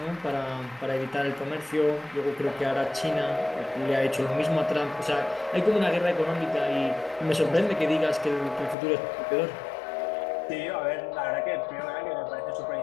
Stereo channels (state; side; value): drops out; right; at 8.8 s